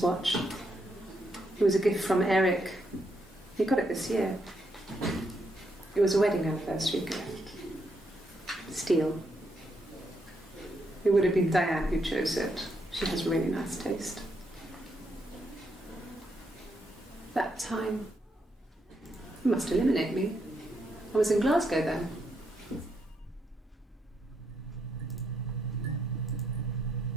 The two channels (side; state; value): both; normal; correlation 0.78